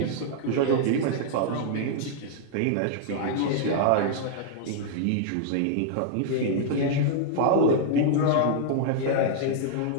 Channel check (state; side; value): different; both; correlation -0.01